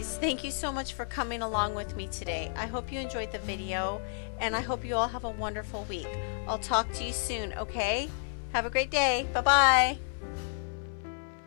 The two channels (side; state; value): right; silent; 57 dB below the other